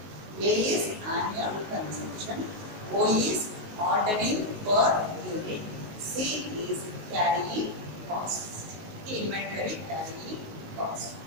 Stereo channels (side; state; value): left; late; 19 ms